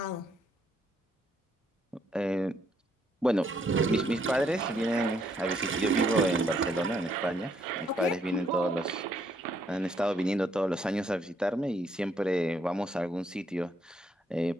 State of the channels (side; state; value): both; normal; correlation 0.71